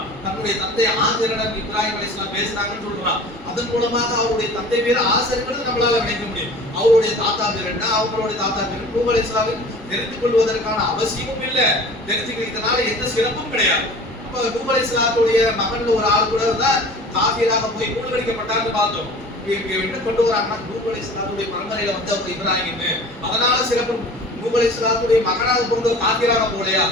தன்னுடைய தந்தை ஆசரிடம் இப்ராஹிம் அலைஹிஸ்ஸலாம் பேசினாங்கன்னு சொல்றான். அதன் மூலமாக அவருடைய தந்தை பேர் ஆசர்ங்கிறது நம்மளால நினைக்க முடியும். அவருடைய தாத்தா பேர் என்ன, அவங்களுடைய தாத்தா பேர் நூஹ் அலைஹிஸ்ஸலாம் தெரிந்து கொள்வதற்கான அவசியமும் இல்லை, தெரிஞ்சுக்கிறதுனால எந்த சிறப்பும் கிடையாது. அப்ப நூஹ் அலைஹிஸ்ஸலாத்துடைய மகன்ல ஒரு ஆள் கூட தான் காஃபிராக போய் மூழ்கடிக்கப்பட்டார்னு பார்த்தோம். என்ன கொண்டு வராங்கன்னா நூஹ் அலைஹிஸ்ஸலாத்துடைய பரம்பரையில வந்து அவர் இப்ராஹிம், அதனால சிறப்பு. நூஹ் அலைஹிஸ்ஸலாத்துடைய மகனாக பிறந்த காஃபிராக போலையா,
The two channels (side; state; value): both; normal; correlation 0.42